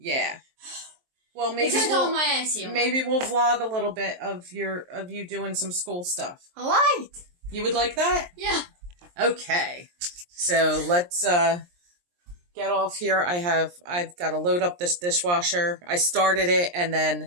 Well, maybe we'll vlog a little bit of you doing some school stuff. All right. You would like that? Yeah. Okay. So let's get off here. I've got to load up this dishwasher. I started it and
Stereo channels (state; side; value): late; left; 23 ms